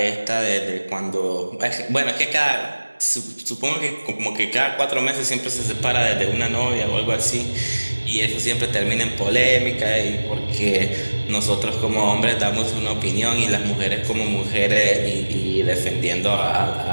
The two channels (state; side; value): inverted; both; correlation -1.00